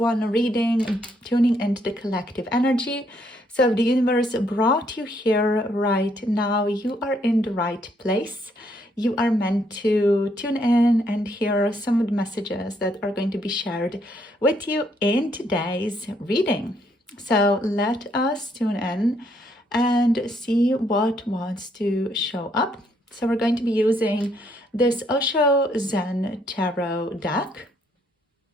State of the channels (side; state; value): both; normal; correlation 0.71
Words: reading, tuning into the collective energy. So if the universe brought you here right now, you are in the right place. You are meant to tune in and hear some of the messages that are going to be shared with you in today's reading. So let us tune in and see what wants to show up. So we're going to be using this Osho Zen Tarot deck.